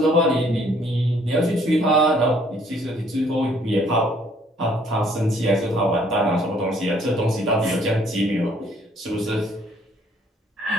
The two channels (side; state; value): both; normal; correlation 0.63